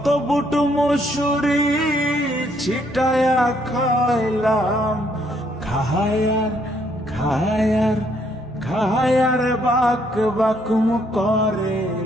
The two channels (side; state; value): both; normal; correlation 0.70